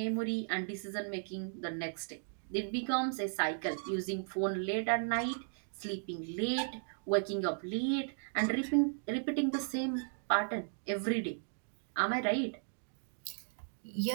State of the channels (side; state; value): left; silent; digital silence